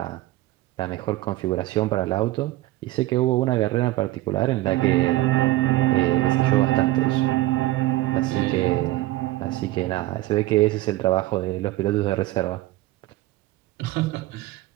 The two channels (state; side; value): quieter; left; 17.2 dB